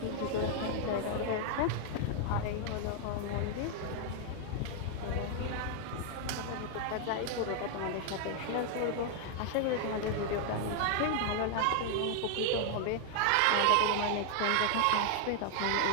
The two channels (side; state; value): both; different; correlation 0.00